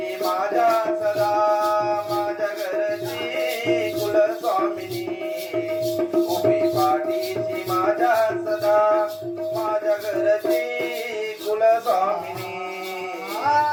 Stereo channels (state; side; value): identical; both; correlation 1.00